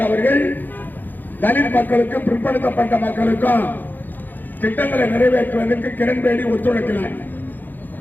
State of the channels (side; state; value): right; late; 0.088 ms